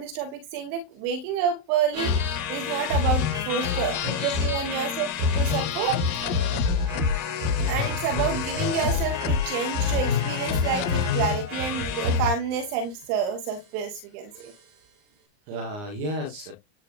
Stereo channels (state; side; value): late; left; 39 ms